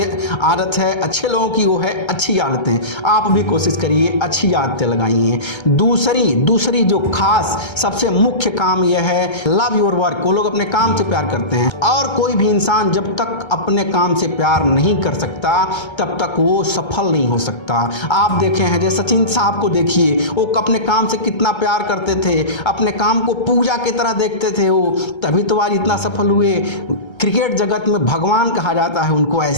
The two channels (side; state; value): right; late; 1.3 ms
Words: आदत है अच्छे लोगों की वो है अच्छी आदतें। आप भी कोशिश करिए अच्छी आदतें लगाइए। दूसरी जो खास सबसे मुख्य काम यह है लव योर वर्क। वो लोग अपने काम से प्यार करते हैं और कोई भी इंसान जब तक अपने काम से प्यार नहीं कर सकता तब तक वो सफल नहीं हो सकता। आप देखे हैं जैसे सचिन साहब को देखिए, वो अपने काम से कितना प्यार करते थे, अपने काम को पूजा की तरह देखते थे वो, तभी तो आज इतना सफल हुए। क्रिकेट जगत में भगवान कहा जाता है उनको,